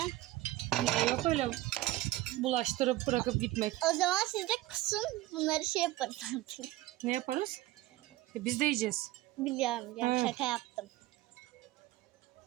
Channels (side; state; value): left; quieter; 16.8 dB